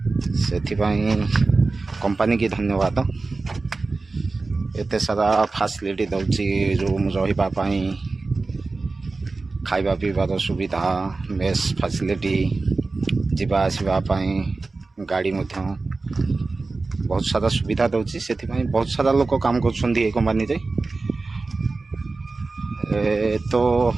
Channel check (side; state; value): left; quieter; 3.7 dB